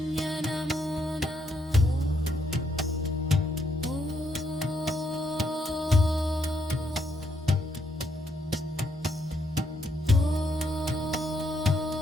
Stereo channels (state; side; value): normal; both; correlation 0.75